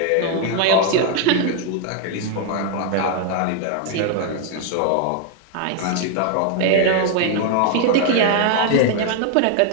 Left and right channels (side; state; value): both; different; correlation 0.00